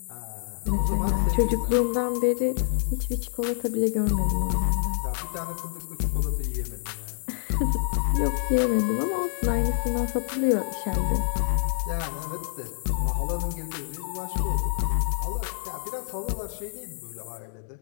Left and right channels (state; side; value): silent; right; 60 dB below the other